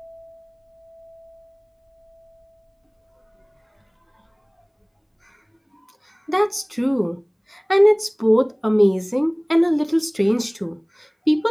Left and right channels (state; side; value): identical; both; correlation 1.00